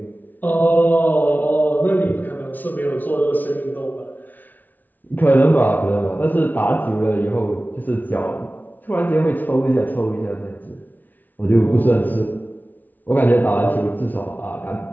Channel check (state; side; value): late; right; 0.082 ms